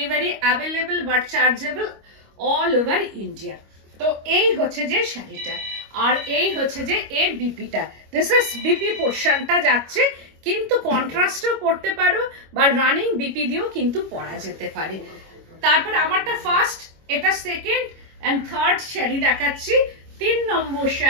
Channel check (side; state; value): left; late; 25 ms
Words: available but chargeable all over India. তো এই হচ্ছে যে শাড়িটা, আর এই হচ্ছে যে এর বিপিটা, দিস ইজ বিপি পোর্শনটা যাচ্ছে, কিন্তু কন্ট্রাস্টও পরতে পারো বা রানিং বিপি দিয়েও কিন্তু পরা যেতে পারে। তারপর আমারটা ফার্স্ট, এটা সেকেন্ড এন্ড থার্ড শাড়ি দেখাচ্ছি। 3 number